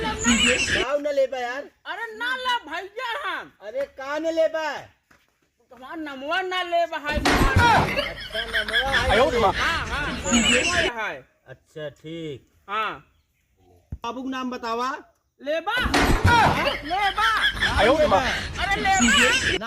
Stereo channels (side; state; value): both; identical; correlation 1.00